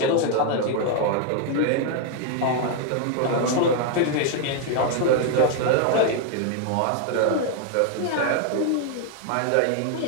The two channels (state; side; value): different; both; correlation 0.00